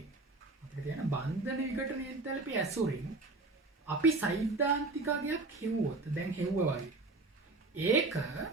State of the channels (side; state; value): left; quieter; 3.3 dB